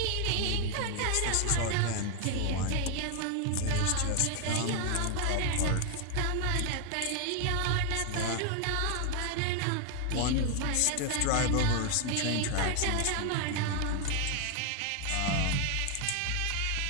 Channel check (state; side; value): different; both; correlation 0.00